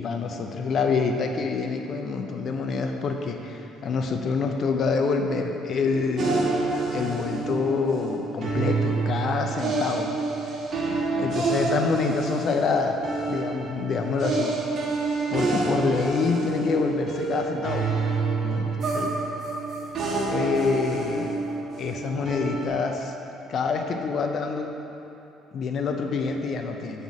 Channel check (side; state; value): both; normal; correlation 0.66